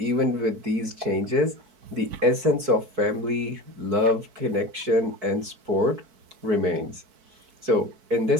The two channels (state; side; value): late; left; 4.6 ms